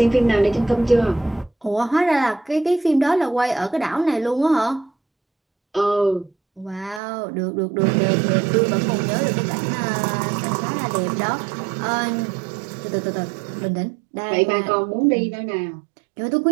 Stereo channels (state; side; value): drops out; left; at 7.0 s